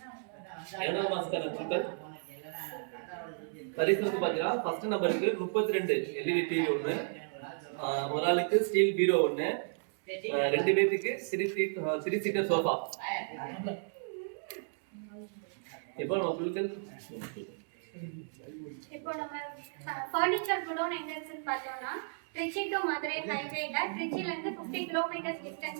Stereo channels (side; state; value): left; silent; digital silence